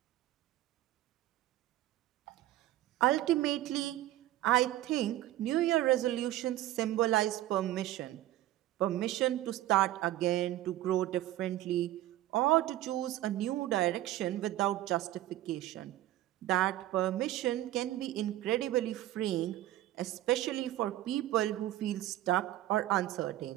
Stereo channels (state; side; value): quieter; left; 14.7 dB